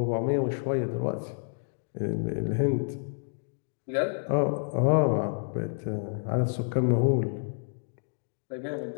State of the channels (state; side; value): silent; right; digital silence